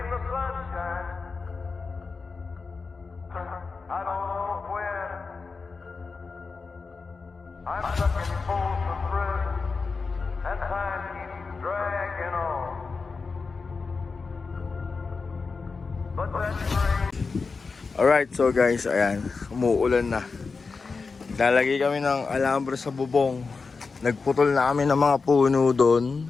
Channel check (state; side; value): quieter; right; 4.5 dB